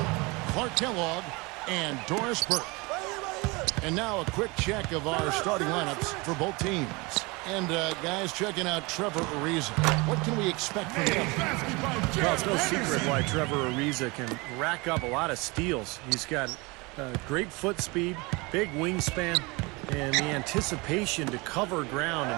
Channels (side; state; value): left; quieter; 25.8 dB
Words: Clark Kellogg, and Doris Burke. And now a quick check of our starting lineups for both teams. And, guys, checking out Trevor Ariza. What can we expect from him? Well, it's no secret why Trevor Ariza can rack up a lot of steals. He's got great foot speed, big wingspan, and the anticipation to cover ground